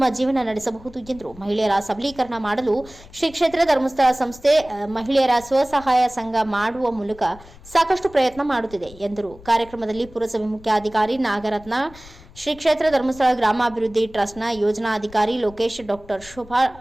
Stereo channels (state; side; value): noise; left; rumble, 21 dB below the sound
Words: ಜೀವನ ನಡೆಸಬಹುದು ಎಂದರು. ಮಹಿಳೆಯರ ಸಬಲೀಕರಣ ಮಾಡಲು ಶ್ರೀ ಕ್ಷೇತ್ರ ಧರ್ಮಸ್ಥಳ ಸಂಸ್ಥೆ ಮಹಿಳೆಯರ ಸ್ವಸಹಾಯ ಸಂಘ ಮಾಡುವ ಮೂಲಕ ಸಾಕಷ್ಟು ಪ್ರಯತ್ನ ಮಾಡುತ್ತಿದೆ ಎಂದರು. ಕಾರ್ಯಕ್ರಮದಲ್ಲಿ ಪುರಸಭೆ ಮುಖ್ಯಾಧಿಕಾರಿ ನಾಗರತ್ನ, ಶ್ರೀ ಕ್ಷೇತ್ರ ಧರ್ಮಸ್ಥಳ ಗ್ರಾಮಾಭಿವೃದ್ಧಿ ಟ್ರಸ್ಟ್ನ ಯೋಜನಾಧಿಕಾರಿ ಲೋಕೇಶ್, ಡಾಕ್ಟರ್ ಶೋಭಾ,